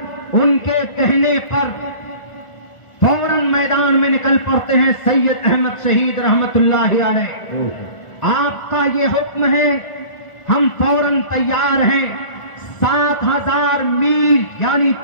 ان کے کہنے پر فوراً میدان میں نکل پڑتے ہیں سید احمد شہید رحمت اللہ علیہ۔ آپ کا یہ حکم ہے، ہم فوراً تیار ہیں۔ 7000 میل یعنی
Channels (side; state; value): right; late; 1.4 ms